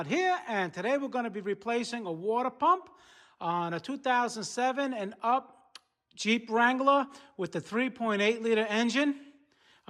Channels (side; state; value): both; identical; correlation 1.00